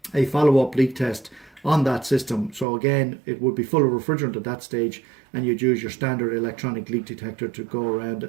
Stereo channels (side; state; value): left; drops out; at 2.7 s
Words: a follow-up leak test on that system. So again, it would be full of refrigerant at that stage, and you'd use your standard electronic leak detector to go around